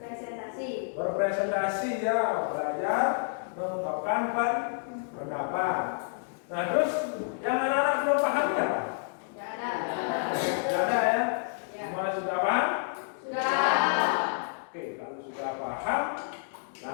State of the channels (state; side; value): silent; right; digital silence